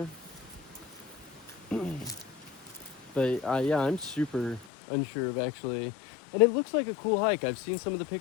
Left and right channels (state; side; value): drops out; right; at 4.7 s